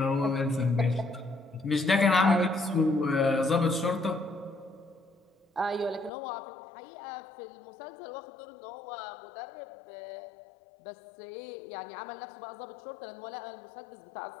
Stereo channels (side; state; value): right; drops out; at 6.1 s